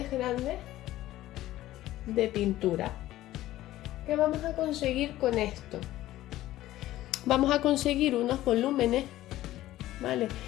grandes de pintura. ¿Qué vamos a conseguir con esto? Vamos a conseguir unos volúmenes, ¿vale?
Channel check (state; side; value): quieter; right; 15.0 dB